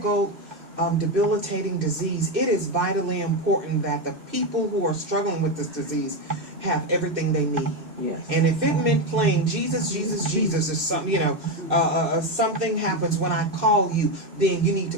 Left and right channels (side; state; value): left; late; 2.6 ms